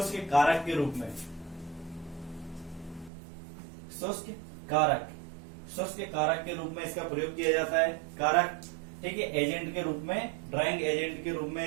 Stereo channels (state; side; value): drops out; left; at 3.1 s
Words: कारक के रूप में। शुष्क कारक, शुष्क कारक के रूप में इसका प्रयोग किया जाता है। कारक, ठीक है, एजेंट के रूप में, ड्राइंग एजेंट के रूप में